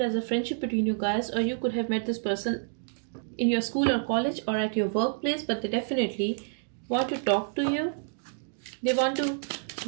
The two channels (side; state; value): left; silent; digital silence